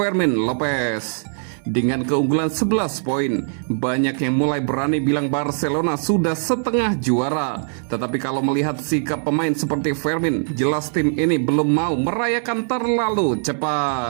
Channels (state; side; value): silent; left; 65 dB below the other